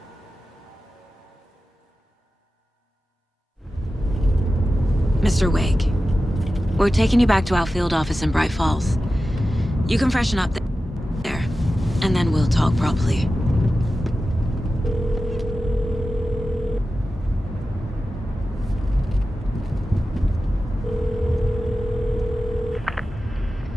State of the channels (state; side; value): normal; both; correlation 0.93